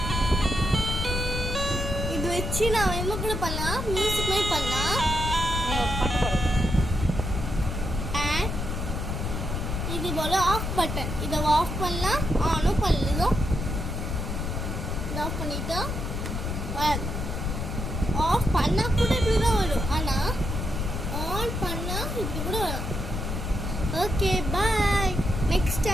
இது வச்சு நான் என்ன கூட பண்ணலாம், மியூசிக் மாதிரி பண்ணலாம். அண்ட் இது போல ஆஃப் பட்டன், இதை ஆஃப் பண்ணலாம், ஆனும் பண்ணலாம். இதை ஆஃப் பண்ணிட்டா ஆஃப் பண்ணால் கூட இப்படி தான் வரும். ஆனால் ஆன் பண்ணால் இப்படி கூட வரும். Okay bye. நெக்ஸ்ட்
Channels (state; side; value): noise; left; rumble, 3 dB below the sound